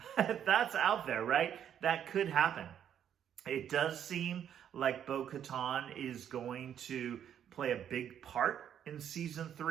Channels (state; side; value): quieter; left; 9.4 dB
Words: but that's out there, right? That could happen. It does seem like Bo-Katan is going to play a big part in season